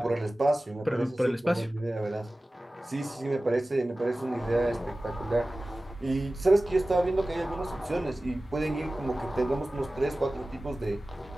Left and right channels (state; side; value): normal; both; correlation 0.97